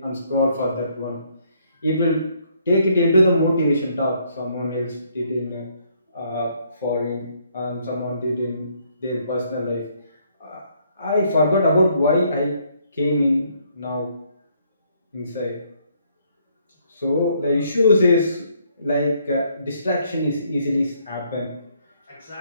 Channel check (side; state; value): both; inverted; correlation -0.69